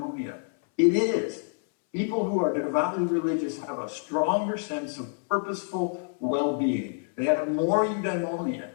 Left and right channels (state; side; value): silent; right; 60 dB below the other